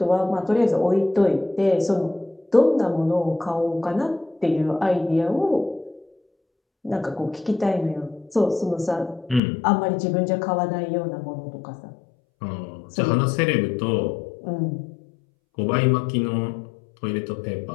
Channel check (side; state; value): right; drops out; at 9.4 s